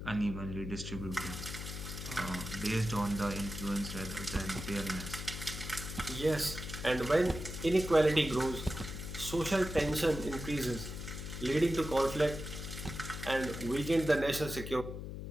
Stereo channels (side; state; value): left; noise; hum, 7 dB below the sound